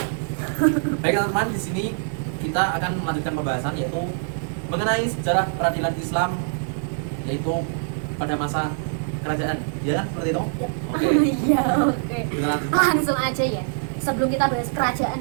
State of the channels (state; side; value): silent; left; digital silence